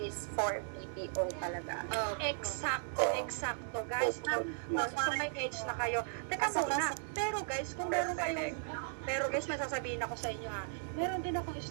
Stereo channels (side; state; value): left; silent; digital silence